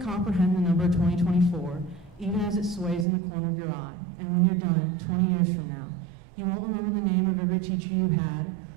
comprehend the number 2024, even as it sways in the corner of your eye. And when you're done, 20 years from now, you won't remember the name of every teacher you had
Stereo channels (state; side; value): drops out; left; at 3.1 s